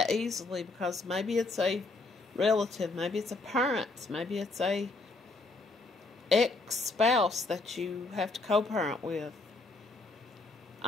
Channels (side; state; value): right; quieter; 3.3 dB